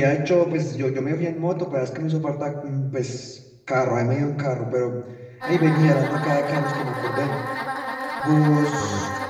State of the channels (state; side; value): identical; both; correlation 1.00